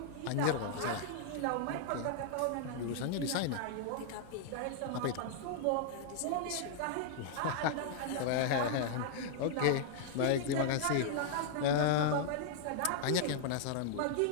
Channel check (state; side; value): different; both; correlation -0.01